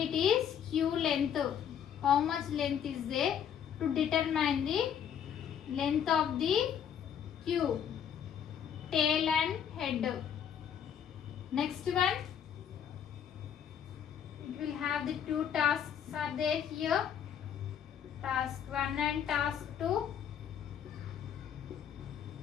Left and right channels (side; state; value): right; quieter; 8.7 dB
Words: it is queue length. How much length is there to determine the length of the queue, tail and head. Next one, it will have the two tasks are there here, task 1 and task 2.